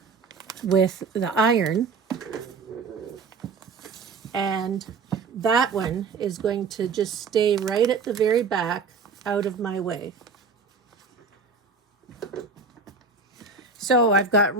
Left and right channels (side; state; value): left; quieter; 4.7 dB